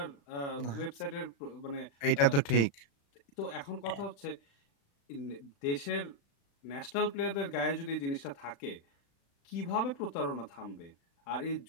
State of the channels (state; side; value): late; right; 36 ms